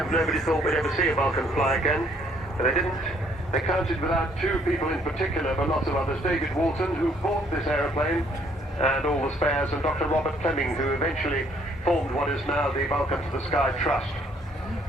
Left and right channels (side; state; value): both; normal; correlation 0.64